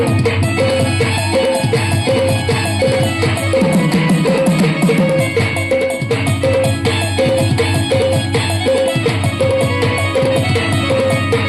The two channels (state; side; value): identical; both; correlation 1.00